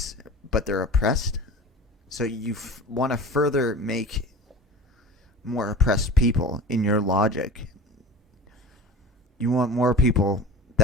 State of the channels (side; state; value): both; normal; correlation 0.38